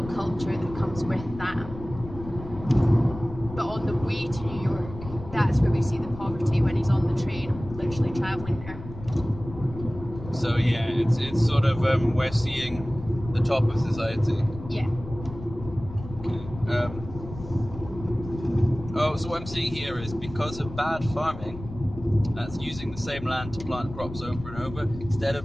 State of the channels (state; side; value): noise; left; rumble, 13 dB below the sound